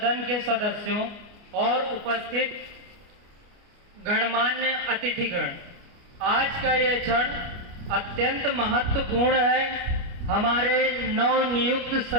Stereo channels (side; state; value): left; late; 29 ms